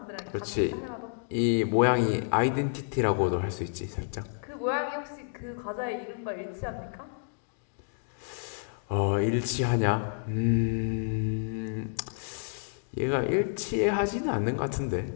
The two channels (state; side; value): silent; right; 58 dB below the other